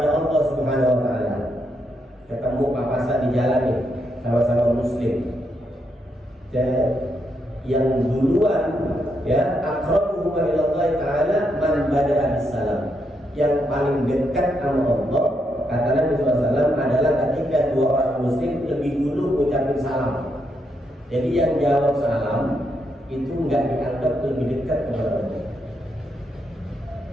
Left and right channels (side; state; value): both; normal; correlation 0.80